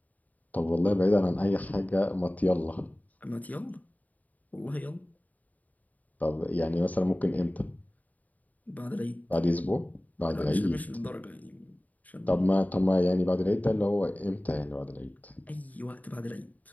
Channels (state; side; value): late; right; 0.075 ms